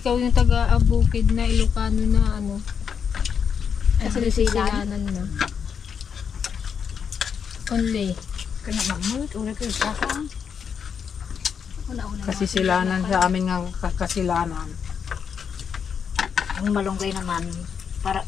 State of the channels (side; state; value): right; quieter; 7.0 dB